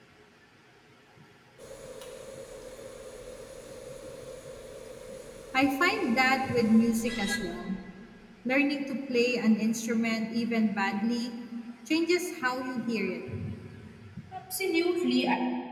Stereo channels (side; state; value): both; identical; correlation 1.00